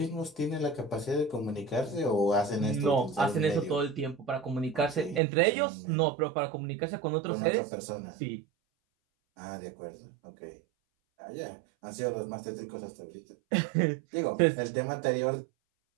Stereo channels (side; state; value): left; drops out; at 5.2 s